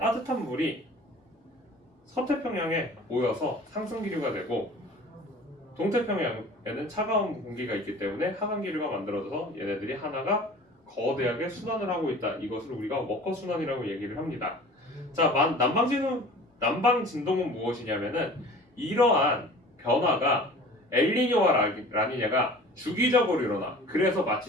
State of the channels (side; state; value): both; normal; correlation 0.44